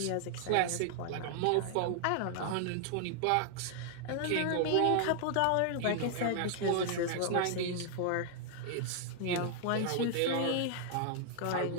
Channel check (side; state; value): both; different; correlation 0.00